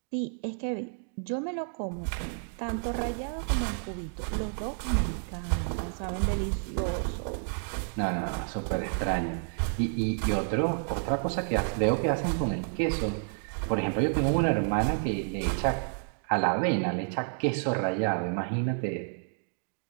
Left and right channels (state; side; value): silent; left; 58 dB below the other